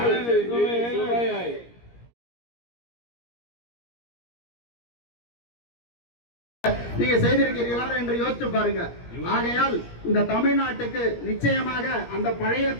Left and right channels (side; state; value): right; late; 17 ms